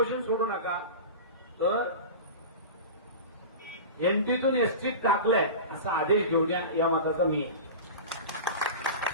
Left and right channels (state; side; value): inverted; both; correlation -0.30